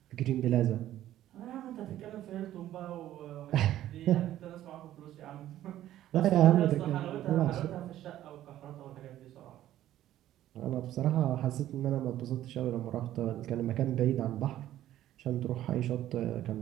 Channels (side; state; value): left; quieter; 13.0 dB